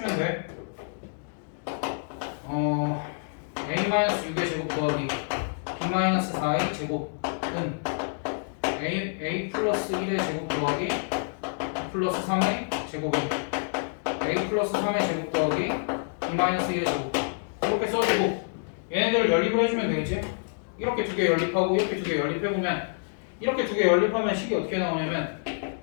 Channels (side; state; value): right; silent; digital silence